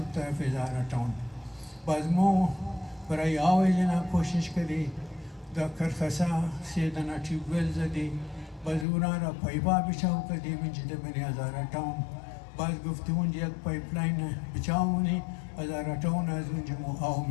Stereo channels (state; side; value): drops out; right; at 8.8 s